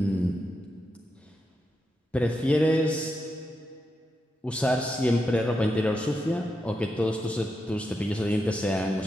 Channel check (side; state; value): both; normal; correlation 0.85